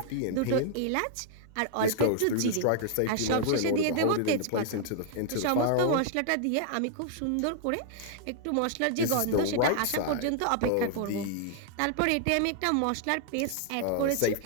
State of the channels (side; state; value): both; different; correlation 0.00